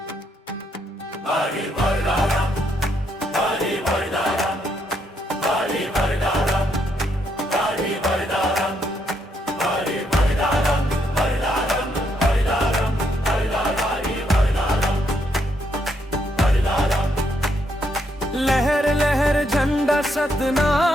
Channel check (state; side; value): normal; both; correlation 0.76